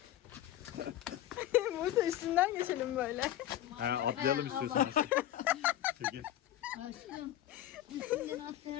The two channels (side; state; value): right; quieter; 12.7 dB